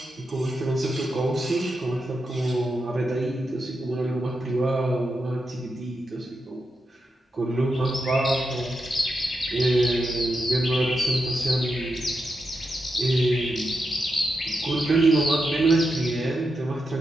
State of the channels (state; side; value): normal; both; correlation 0.87